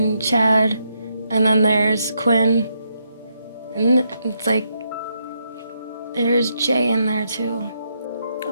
Chad, and then there's Quinn, and it's like there's Jay in there too.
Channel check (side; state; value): both; inverted; correlation -0.79